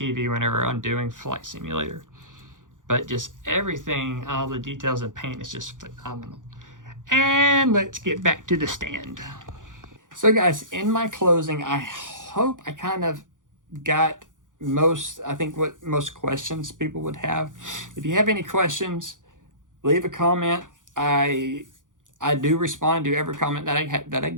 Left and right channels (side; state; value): left; late; 0.88 ms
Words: whenever I'm doing Flight Simulator. But just everything, all the details and paint is just phenomenal. And let's get back to the stand. So guys, in my closing, I hope I kind of got what most questions people would have. If you have any questions, leave a comment. I do respond to every comment that I